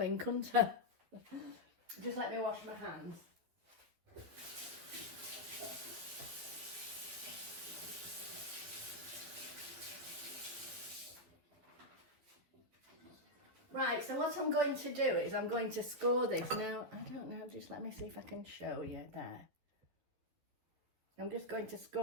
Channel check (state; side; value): late; left; 12 ms